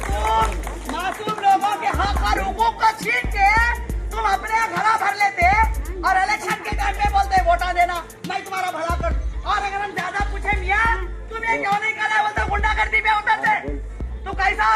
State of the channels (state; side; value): identical; both; correlation 1.00